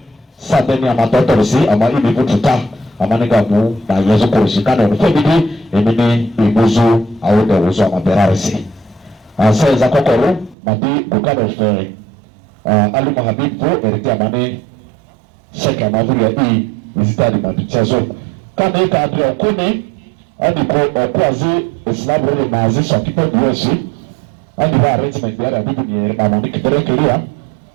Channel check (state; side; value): drops out; left; at 10.6 s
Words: Sabeni Amatorisi, Amani Bututa. Amanigamu na yezo kurushikana unifebidi emini imuzu au de uzo amaberarisi. Seza kokoro madi bukano fe alu mahabibu eriti amani sheke amavuri ya ii izitadi mabichezo. Kama ika abri okuni adi okuazi islamu maazi shakipo biyoshi adi wa arrangement biyari abibu ni mamoni kitere kiria